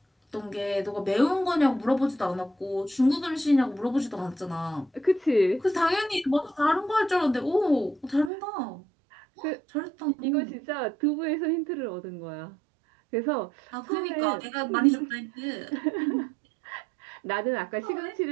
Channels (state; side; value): drops out; left; at 8.3 s